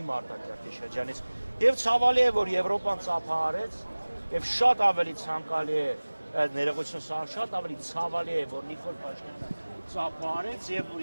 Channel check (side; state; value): both; inverted; correlation -1.00